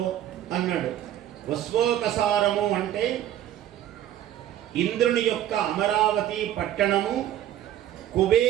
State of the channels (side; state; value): left; quieter; 12.0 dB